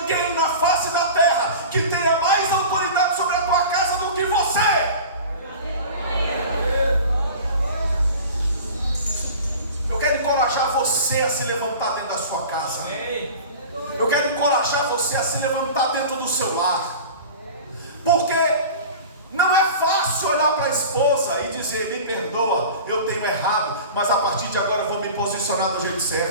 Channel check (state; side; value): inverted; both; correlation -0.37